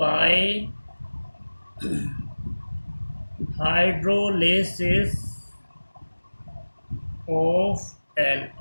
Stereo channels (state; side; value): inverted; both; correlation -1.00